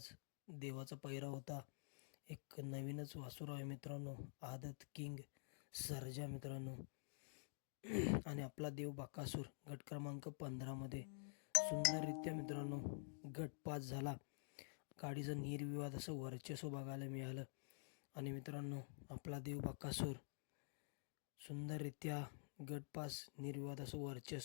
देवाचा पैरा होता. एक नवीनच वासुर आहे मित्रांनो, आदत किंग सर्जा मित्रांनो. आणि आपला देव बकासूर गट क्रमांक 15 मध्ये सुंदररित्या मित्रांनो गट पास झाला. गाडीचं निर्विवाद असं वर्चस्व बघायला मिळालं. आणि मित्रांनो, आपला देव बकासूर सुंदररित्या गट पास निर्विवाद असं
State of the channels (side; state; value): right; silent; digital silence